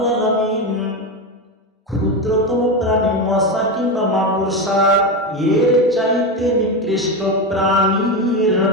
আলামিন ক্ষুদ্রতম প্রাণী মশা কিংবা মাকড়সা এর চাইতে নিকৃষ্ট প্রাণীর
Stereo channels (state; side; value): normal; both; correlation 0.15